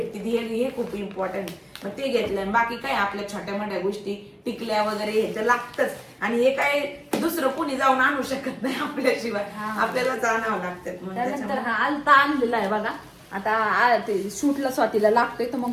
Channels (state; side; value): identical; both; correlation 1.00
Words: हे खूप इम्पॉर्टंट. मग ते घेतलं. बाकी काय आपल्या छोट्या मोठ्या गोष्टी टिकल्या वगैरे ह्याचं लागतच, आणि हे काय दुसरं कोणी जाऊन आणू शकत नाही आपल्याशिवाय, आपल्यालाच आणावं लागतं. त्यानंतर हा आलता आणलेला आहे बघा. आता ते शूटला स्वातीला लागतोय तर मग